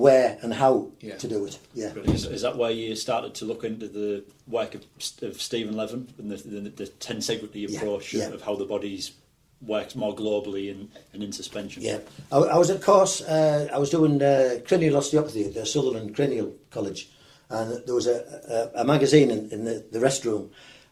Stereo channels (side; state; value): both; identical; correlation 1.00